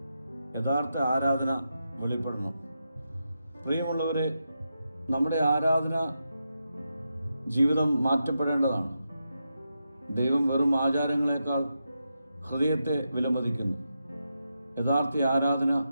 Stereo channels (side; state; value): both; inverted; correlation -0.86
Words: യഥാർത്ഥ ആരാധന വെളിപ്പെടണം. പ്രിയമുള്ളവരെ, നമ്മുടെ ആരാധന ജീവിതം മാറ്റപ്പെടേണ്ടതാണ്. ദൈവം വെറും ആചാരങ്ങളെക്കാൾ ഹൃദയത്തെ വിലമതിക്കുന്നു. യഥാർത്ഥ ആരാധന